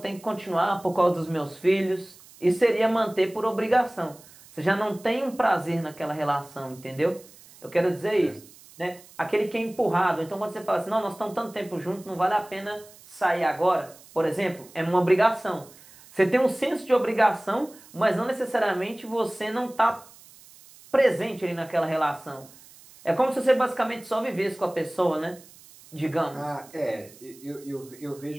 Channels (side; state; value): right; noise; hiss, 23 dB below the sound